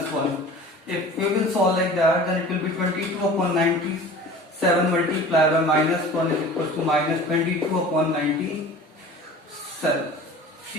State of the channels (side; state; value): both; normal; correlation 0.41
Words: 1. If we will solve like that, then it will be 22 upon 97 multiplied by minus 1 is equals to minus 22 upon 97.